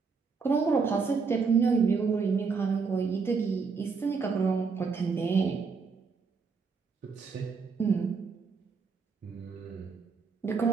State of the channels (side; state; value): left; quieter; 5.1 dB